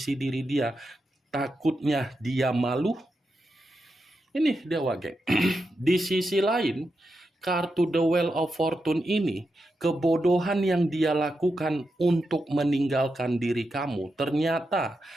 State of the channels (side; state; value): both; normal; correlation 0.87